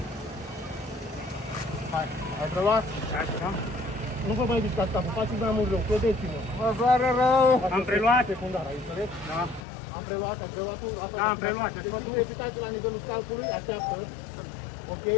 Hai, ai preluat? Așa. Nu vă mai discați capul, faceți mai mult rău, credeți-mă. Mă doare rău. Am preluat? Secundar, ai înțeles? Da. Am preluat, ai preluat. Da, am preluat. Deci crepitați la nivelul scalpului, așteaptă. Ok,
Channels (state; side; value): drops out; right; at 9.6 s